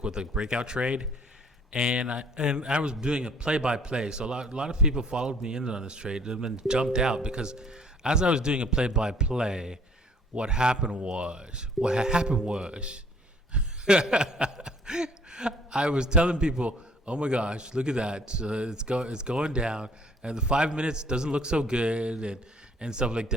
with a breakout trade, and I was doing a play-by-play. So a lot of people followed me in on this trade and then jumped out because as I was doing a play-by-play, what happened was. I was telling people, oh my gosh, look at that. It's going down, and the 5 minutes doesn't look so good and stuff like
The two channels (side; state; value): both; normal; correlation 0.58